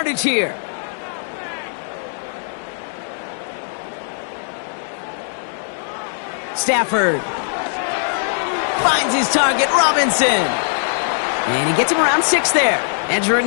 here. Stafford finds his target, Robinson. And he gets him around 6 there. Edger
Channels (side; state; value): right; silent; digital silence